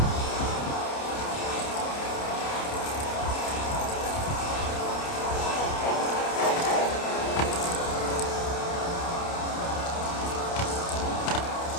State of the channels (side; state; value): right; late; 29 ms